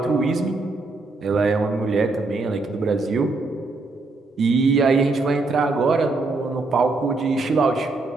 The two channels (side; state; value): left; quieter; 3.4 dB